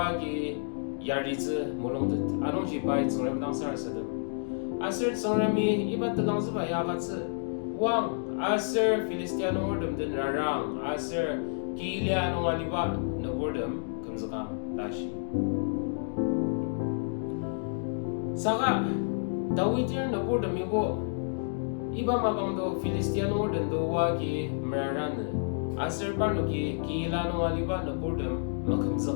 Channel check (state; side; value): silent; right; digital silence